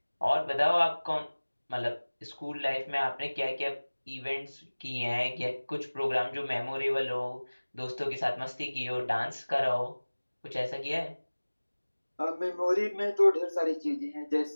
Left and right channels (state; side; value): inverted; both; correlation -1.00